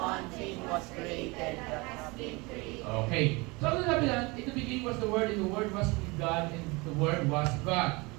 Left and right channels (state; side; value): quieter; left; 25.7 dB